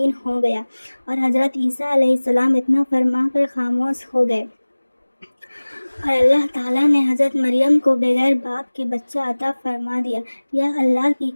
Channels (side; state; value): both; inverted; correlation -1.00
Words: ہو گیا، اور حضرت عیسیٰ علیہ السلام اتنا فرما کر خاموش ہو گئے، اور اللہ تعالیٰ نے حضرت مریم کو بغیر باپ کے بچہ عطا فرما دیا۔ یہ اللہ کی